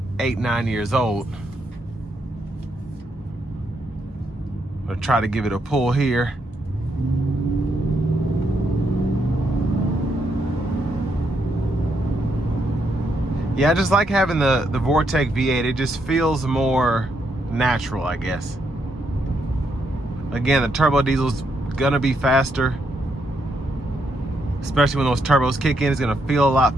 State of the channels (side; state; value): both; normal; correlation 0.78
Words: 8-9 years old. I'm gonna try to give it a pull here. Yeah, I just like having the Vortec V8. It just feels more natural, I guess. Again, the turbo diesel's gonna be faster, especially when those turbos kick in. It's gonna feel a lot